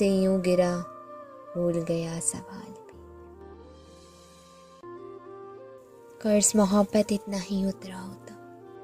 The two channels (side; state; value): both; identical; correlation 1.00